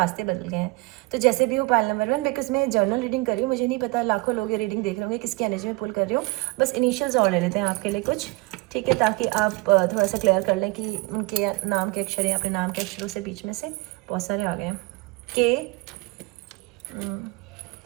बदल गए हैं। तो जैसे भी हो पायल नंबर 1, बिकॉज मैं जर्नल रीडिंग कर रही हूँ, मुझे नहीं पता लाखों लोग ये रीडिंग देख रहे होंगे किसकी एनर्जी में पुल कर रही हूँ, बस इनिशियल्स और ले लेते हैं आपके लिए कुछ, ठीक है, ताकि आप थोड़ा सा क्लियर कर लें कि उनके नाम के अक्षर या अपने नाम के अक्षरों से बीच में से बहुत सारे आ गए हैं। के,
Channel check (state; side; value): quieter; left; 23.5 dB